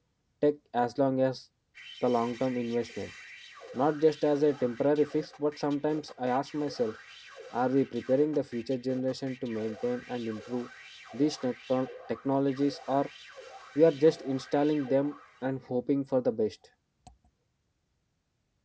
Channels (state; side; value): identical; both; correlation 1.00